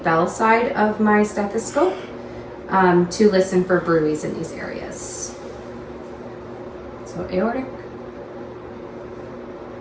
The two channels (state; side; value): identical; both; correlation 1.00